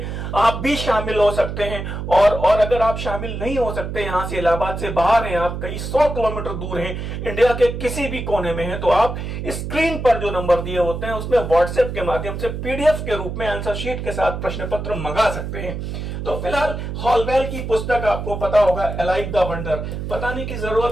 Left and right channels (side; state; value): right; noise; hum, 5 dB below the sound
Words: आप भी शामिल हो सकते हैं। और अगर आप शामिल नहीं हो सकते, यहां से इलाहाबाद से बाहर हैं, आप कई 100 किलोमीटर दूर हैं, इंडिया के किसी भी कोने में हैं, तो आप स्क्रीन पर जो नंबर दिए होते हैं उसमें व्हाट्सएप के माध्यम से पीडीएफ के रूप में आंसर शीट के साथ प्रश्न पत्र मंगा सकते हैं। तो फिलहाल हॉलवेल की पुस्तक आपको पता होगा, अलाइव द वंडर, बताने की